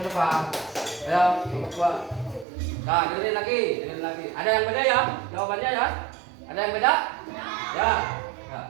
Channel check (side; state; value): left; drops out; at 2.5 s